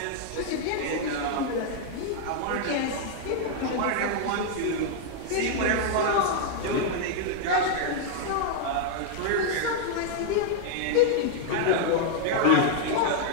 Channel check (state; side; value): different; both; correlation -0.01